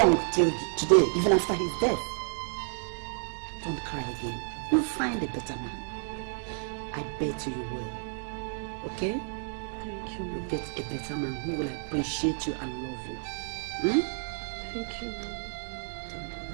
till today, even after his death. Don't cry again. You'll find a better man. I bet you will. Okay? Thank you. You'll get a better man who will appreciate you and love you. Thank you.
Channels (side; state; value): left; silent; 57 dB below the other